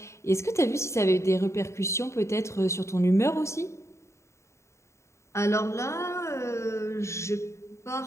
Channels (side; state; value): right; late; 0.14 ms